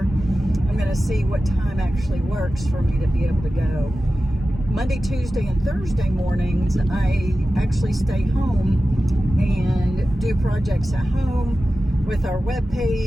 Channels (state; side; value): normal; both; correlation 0.94